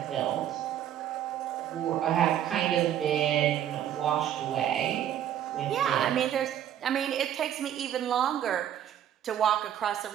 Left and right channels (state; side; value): quieter; left; 10.6 dB